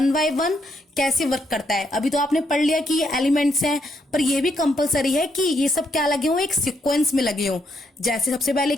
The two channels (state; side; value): normal; both; correlation 0.76